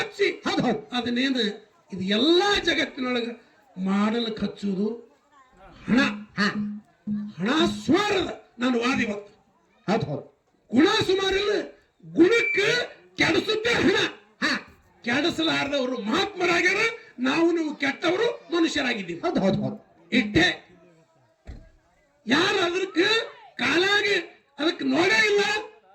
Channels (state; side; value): identical; both; correlation 1.00